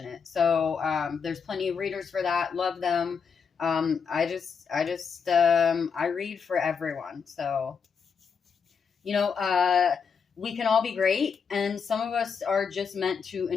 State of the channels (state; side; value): quieter; right; 6.2 dB